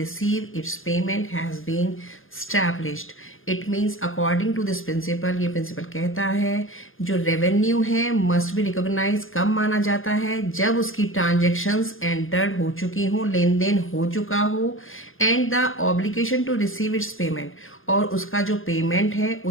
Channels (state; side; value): late; right; 0.59 ms